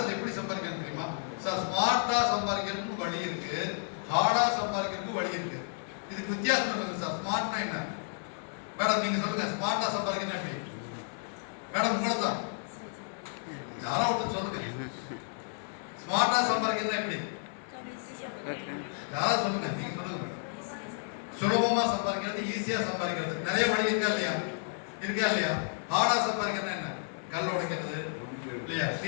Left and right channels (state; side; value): silent; right; digital silence